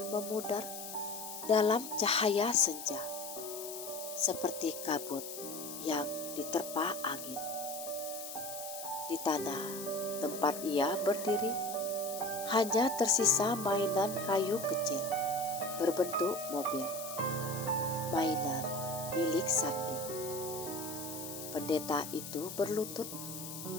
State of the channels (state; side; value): noise; left; hiss, 9 dB below the sound